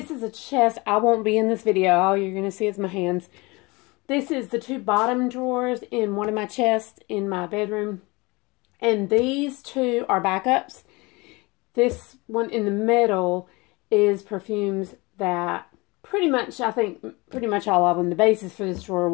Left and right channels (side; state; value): right; quieter; 24.7 dB